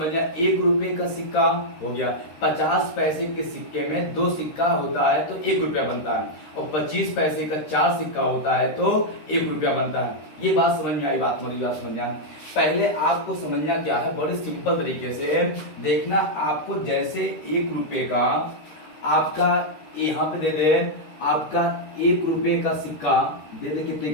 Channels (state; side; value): late; right; 13 ms